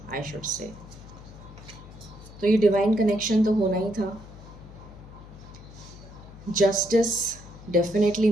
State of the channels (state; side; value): noise; left; hum, 17 dB below the sound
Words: I should say. तो ये डिवाइन कनेक्शन तो होना ही था. जस्टिस डेफिनेटली